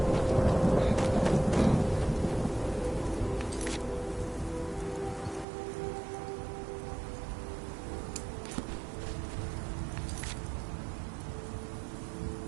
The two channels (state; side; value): drops out; left; at 5.5 s